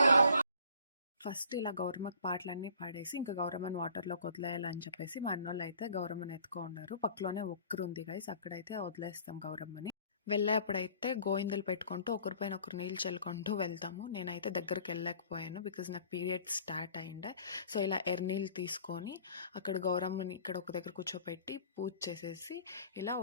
ఫస్ట్ ఇలా గౌరమ్మకి పాటలన్నీ పాడేసి ఇంకా గౌరమ్మని వాటర్లోకి వదిలేయాలని చెప్పేసి మా అన్నోళ్ళు అయితే గౌరమ్మని ఎత్తుకో ఉన్నారు. పక్కలోనే ఒక్కరు ఉంది గైస్, అక్కడైతే వదిలేస్తాం గౌరమ్మని. వెళ్ళేప్పుడైతే గోయిందలు పెట్టుకుంటూ ఒకరిపైన ఒకరు నీళ్ళు చల్లుకుంటూ వెళ్తాము. నేనైతే దగ్గరికి వెళ్ళలేకపోయాను బికాజ్ నాకు పీరియడ్ స్టార్ట్ అయిండే. సో ఇలా ఎర్నీళ్ళు తీసుకొని అక్కడ గౌరమ్మని ఇక్కడ ఒక దగ్గర కూర్చోపెట్టి పూజ చేసేసి ఇలా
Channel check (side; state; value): both; inverted; correlation -0.51